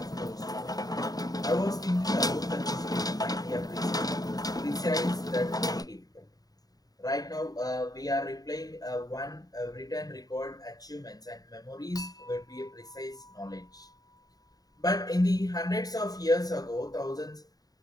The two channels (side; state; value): right; late; 0.18 ms